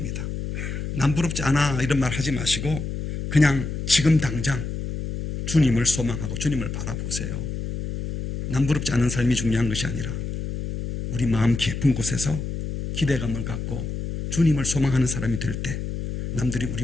남부럽지 않아 이런 말 하지 마시고 그냥 지금 당장 주님을 소망하고 주님을 바라보세요. 남부럽지 않은 삶이 중요한 것이 아니라 우리 마음 깊은 곳에서 기대감을 갖고 주님을 소망하는 사람이 될 때 남들이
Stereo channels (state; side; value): noise; left; hum, 5 dB below the sound